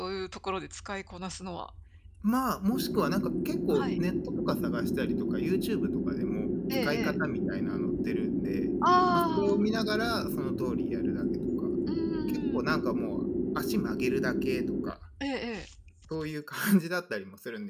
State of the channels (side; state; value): both; identical; correlation 1.00